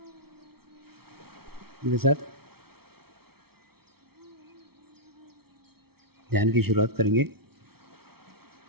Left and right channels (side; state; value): left; late; 0.95 ms